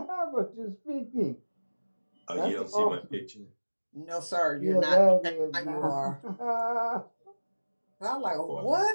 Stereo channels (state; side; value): inverted; both; correlation -1.00